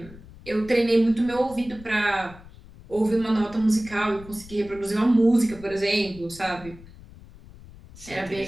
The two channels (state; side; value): noise; left; rumble, 19 dB below the sound